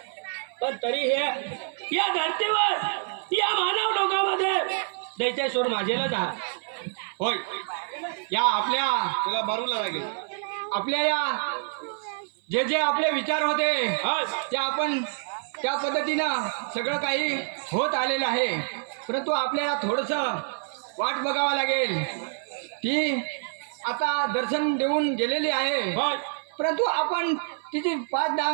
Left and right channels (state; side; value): silent; left; 57 dB below the other